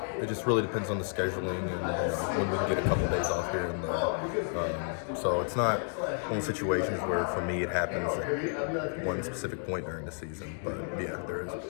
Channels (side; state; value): right; silent; 57 dB below the other